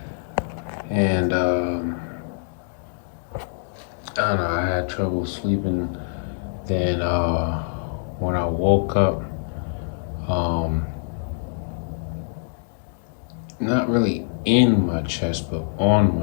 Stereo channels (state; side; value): silent; right; digital silence